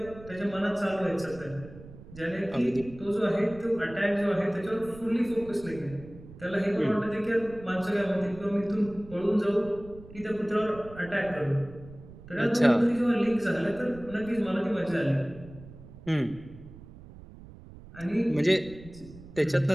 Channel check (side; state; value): right; noise; rumble, 18 dB below the sound